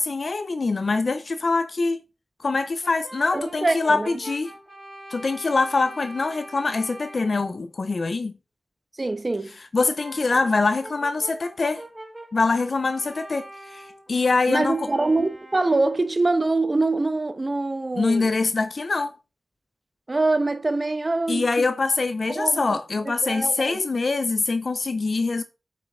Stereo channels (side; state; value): both; normal; correlation 0.94